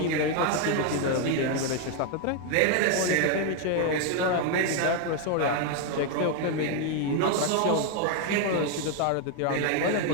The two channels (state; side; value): different; both; correlation 0.01